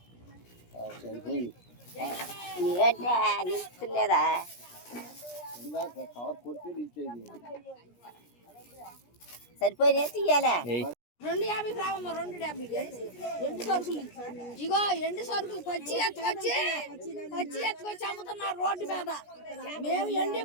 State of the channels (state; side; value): late; right; 17 ms